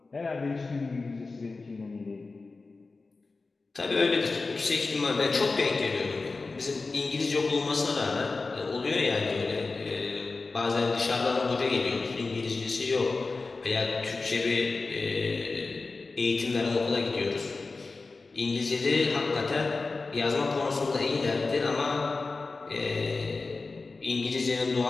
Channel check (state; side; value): quieter; right; 3.8 dB